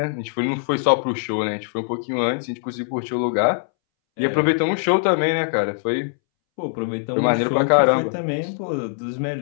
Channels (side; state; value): right; silent; 63 dB below the other